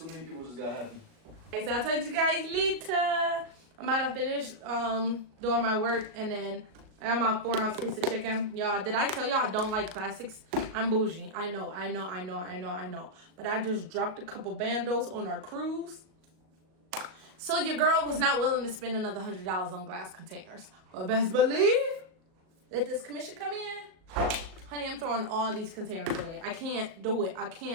many people just got happy. Okay, so I'll talk to you guys later. I'm about to finish doing my work, and then I got my 4-ounce piece of chicken. Y'all, did I tell y'all I don't like plastics? I'm bougie. I know. But I just dropped a couple bandos on our cruise. So your girl was not willing to spend another $100 on glass containers. But best believe, let this commission come in. Honey, I'm throwing all these containers away. I can't do it.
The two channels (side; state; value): left; late; 37 ms